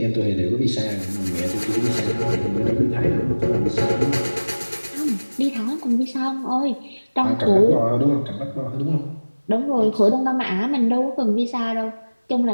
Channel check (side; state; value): both; inverted; correlation -1.00